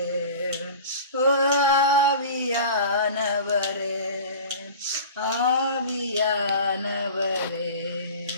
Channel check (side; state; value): both; inverted; correlation -0.37